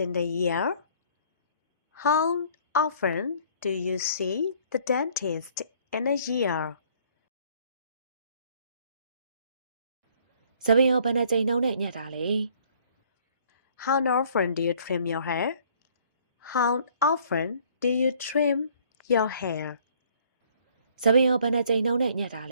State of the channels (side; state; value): both; inverted; correlation -0.59